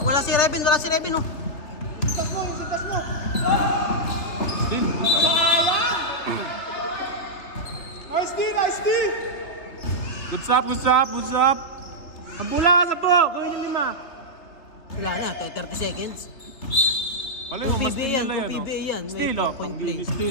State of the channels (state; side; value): late; right; 3.3 ms